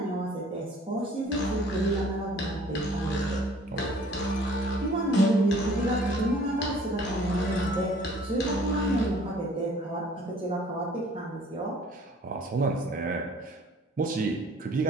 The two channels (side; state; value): both; normal; correlation 0.54